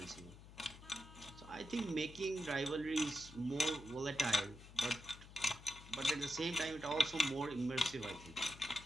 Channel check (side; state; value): left; noise; hum, 17 dB below the sound